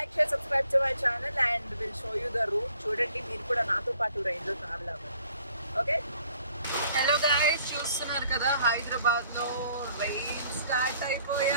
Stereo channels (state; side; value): inverted; both; correlation -0.60